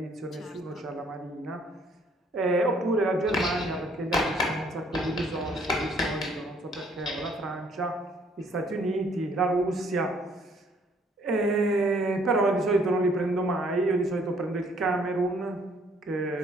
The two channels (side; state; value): both; normal; correlation 0.63